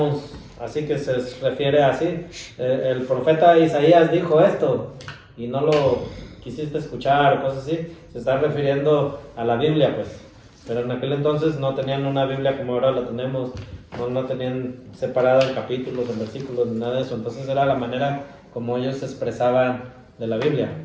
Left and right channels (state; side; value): identical; both; correlation 1.00